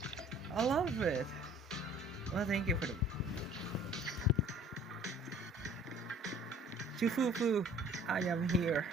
I love it. Well, thank you for the... Shifu, I am here.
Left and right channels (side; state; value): both; normal; correlation 0.51